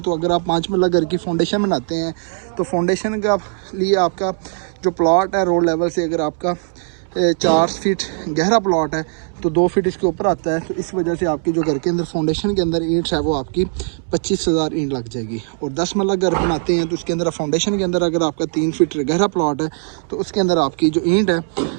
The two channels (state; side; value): silent; left; digital silence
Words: अगर आप 5 मरला घर की फाउंडेशन बनाते हैं तो फाउंडेशन का लिए आपका जो प्लॉट है रोड लेवल से, अगर आपका 4 फीट गहरा प्लॉट है तो 2 फीट इसके ऊपर आता है, तो इस वजह से आपकी जो घर के अंदर फाउंडेशन के अंदर ईंट है वो आपकी 25,000 ईंट लग जाएगी। और 10 मरला घर बनाते हैं तो उसके अंदर फाउंडेशन के अंदर अगर आपका 3 फीट गहरा प्लॉट है तो उसके अंदर आपकी जो ईंट है